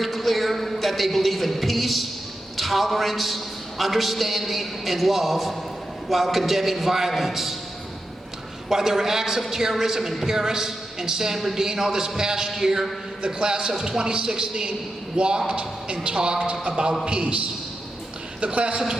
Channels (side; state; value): both; normal; correlation 0.88